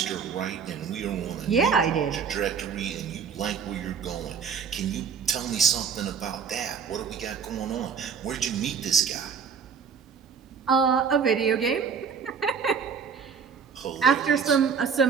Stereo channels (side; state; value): left; quieter; 6.4 dB